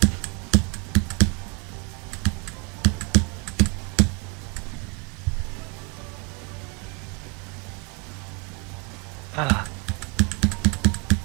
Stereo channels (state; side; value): quieter; left; 30.0 dB